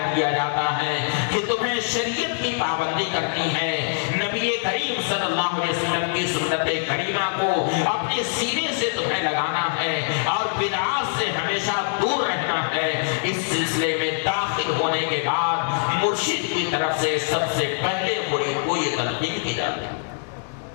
لیا جاتا ہے کہ تمہیں شریعت کی پابندی کرنی ہے، نبی کریم صلی اللہ علیہ وسلم کی سنت کریمہ کو اپنے سینے سے تمہیں لگانا ہے اور بدعات سے ہمیشہ دور رہنا ہے۔ اس سلسلے میں داخل ہونے کے بعد مرشد کی طرف سے سب سے پہلے مرید کو یہ تلقین کی جاتی ہے۔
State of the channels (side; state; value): right; silent; digital silence